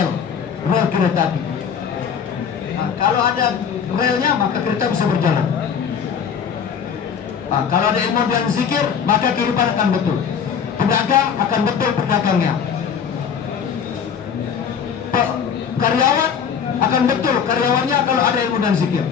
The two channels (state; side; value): quieter; right; 7.2 dB